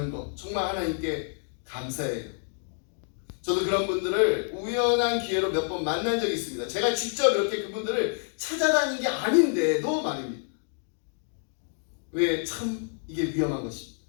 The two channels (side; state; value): right; silent; 59 dB below the other